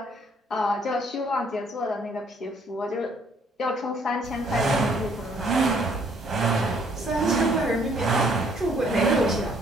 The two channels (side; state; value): both; normal; correlation 0.64